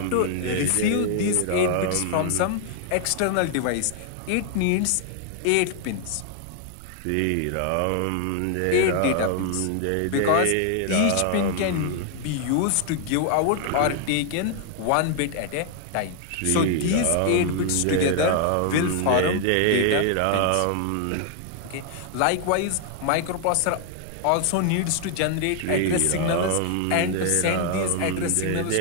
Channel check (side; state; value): both; different; correlation 0.00